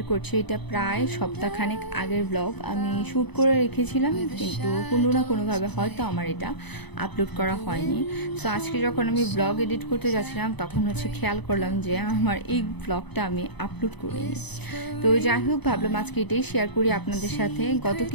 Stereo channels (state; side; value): late; right; 0.99 ms